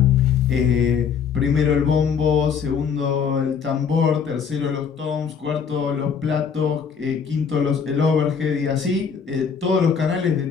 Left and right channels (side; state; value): right; quieter; 6.6 dB